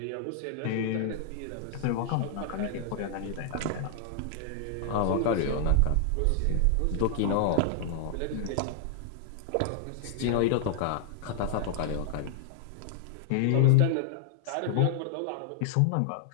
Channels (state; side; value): different; both; correlation -0.01